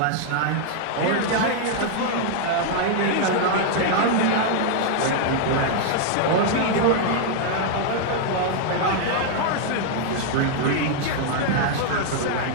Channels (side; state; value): both; different; correlation 0.00